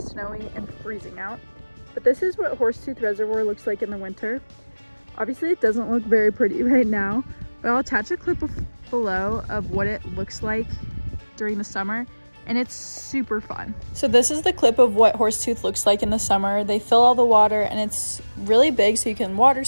and freezing out. But this is what Horsetooth Reservoir looks like in the winter. Obviously it doesn't look very pretty right now, but I'll attach a clip below of what it looks like during the summer, and it's super fun. So this is the clip of what Horsetooth looks like in the summer. They fill all the water and it's really big, so you can water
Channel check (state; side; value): inverted; both; correlation -1.00